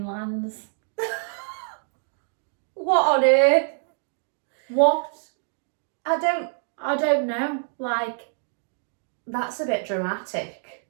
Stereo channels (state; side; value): silent; left; digital silence